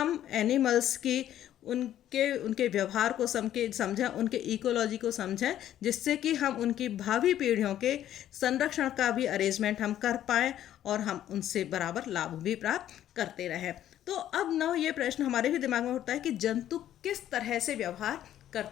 एनिमल्स की उनके व्यवहार को समझें, उनके इकोलॉजी को समझें, जिससे कि हम उनकी भावी पीढ़ियों के संरक्षण का भी अरेंजमेंट हम कर पाएँ और हम उनसे बराबर लाभ भी प्राप्त करते रहें। तो अब ना ये प्रश्न हमारे भी दिमाग में उठता है कि जंतु किस तरह से व्यवहार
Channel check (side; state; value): right; quieter; 11.7 dB